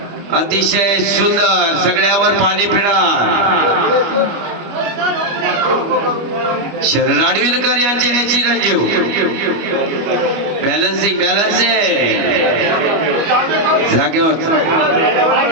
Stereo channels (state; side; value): late; left; 25 ms